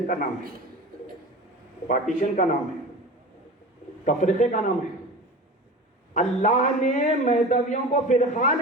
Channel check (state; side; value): normal; both; correlation 0.33